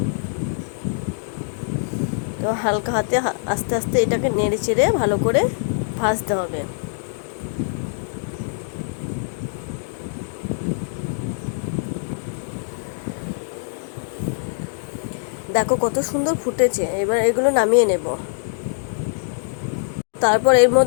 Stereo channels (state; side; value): silent; right; digital silence